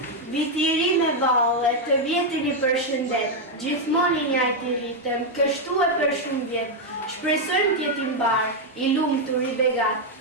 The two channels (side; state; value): both; normal; correlation 0.01